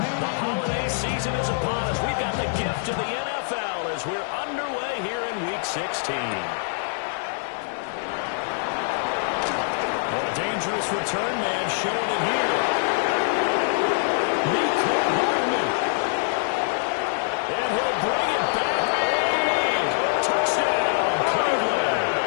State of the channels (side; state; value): right; silent; digital silence